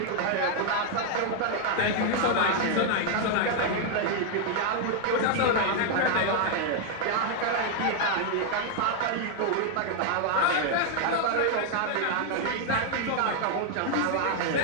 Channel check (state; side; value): different; both; correlation 0.00